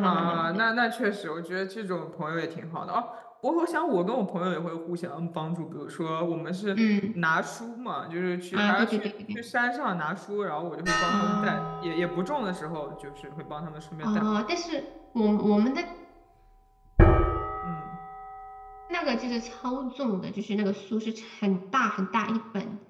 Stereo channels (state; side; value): identical; both; correlation 1.00